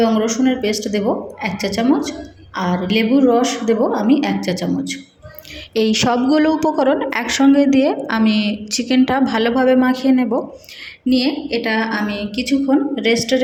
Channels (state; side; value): identical; both; correlation 1.00